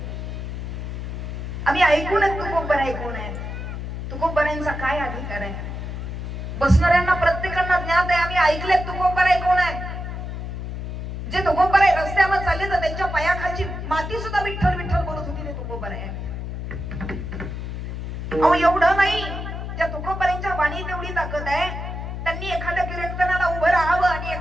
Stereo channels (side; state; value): left; noise; hum, 6 dB below the sound